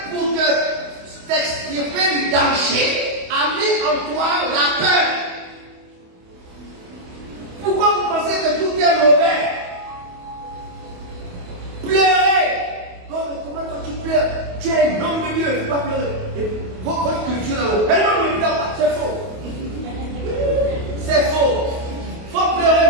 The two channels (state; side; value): late; left; 28 ms